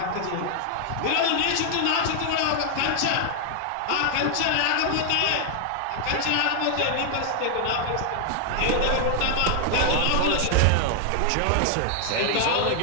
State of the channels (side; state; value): both; different; correlation 0.00